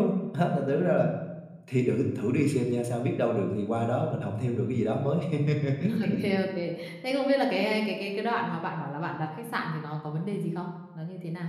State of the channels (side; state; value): both; identical; correlation 1.00